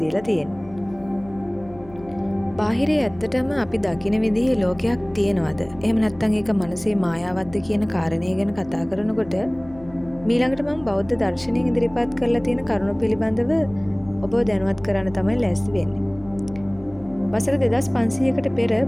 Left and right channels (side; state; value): left; noise; hum, 21 dB below the sound